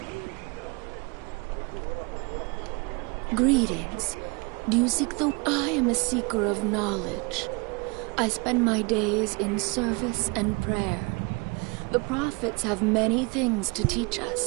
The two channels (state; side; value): quieter; left; 29.5 dB